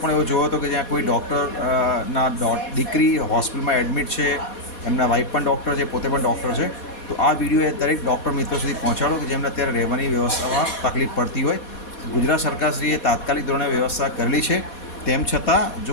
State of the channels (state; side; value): late; right; 4.2 ms